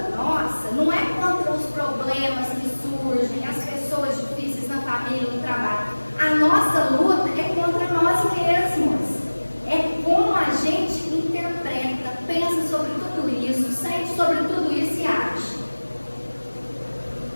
nossa não é contra os problemas que surgem, as pessoas difíceis na família, no trabalho. A nossa luta é contra nós mesmos. É como a gente interpreta, pensa sobre tudo isso, sente sobre tudo isso e age.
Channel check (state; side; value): inverted; both; correlation -1.00